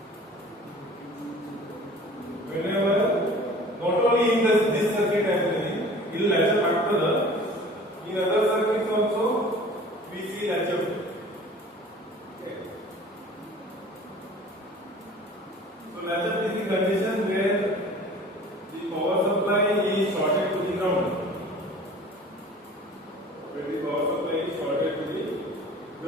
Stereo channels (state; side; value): normal; both; correlation 0.45